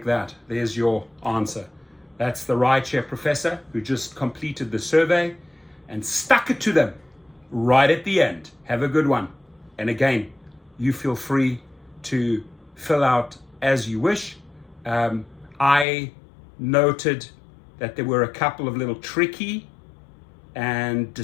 that. There's your answer. That's the Rideshare professor who just completed the survey and stuck it to them right at the end. Have a good one. And again, you feel free to fill out as you wish. I noted that there were a couple of little tricky and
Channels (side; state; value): right; drops out; at 15.9 s